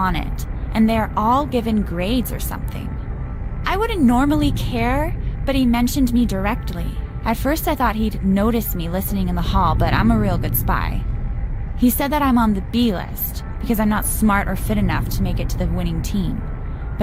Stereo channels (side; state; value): both; identical; correlation 1.00